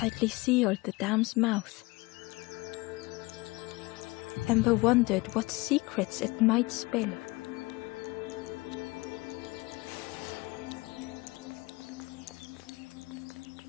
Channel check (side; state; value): right; quieter; 23.2 dB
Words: sealed the dam's mouth. Ember wondered what secrets it might spill.